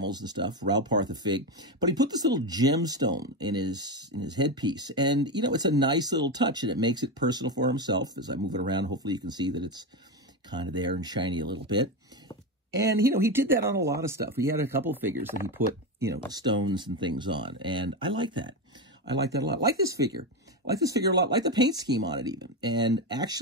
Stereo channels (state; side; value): normal; both; correlation 0.14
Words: and stuff, Ral Partha fig, but he put this little gemstone in his headpiece. And, you know, it's a nice little touch, and it makes it personal for himself. As I move it around, hopefully you can see that it's kind of there and shiny a little bit. And, you know, he did that on a lot of stuff. He had a couple of figures that he put, you know, stones and things on. And I like that. I like that a lot. I like this figure. I like this figure a lot. I like the paint scheme on it even. And